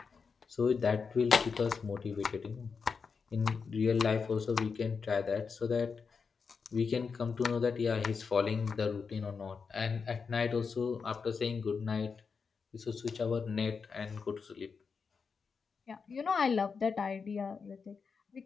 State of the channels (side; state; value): right; quieter; 5.4 dB